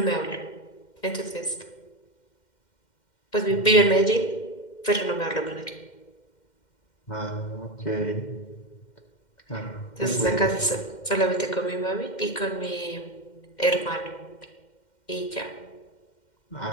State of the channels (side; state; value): right; late; 2.1 ms